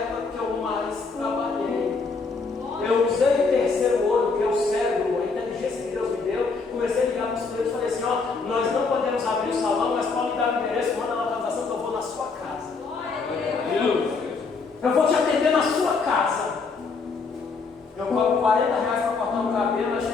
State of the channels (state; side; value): quieter; right; 4.5 dB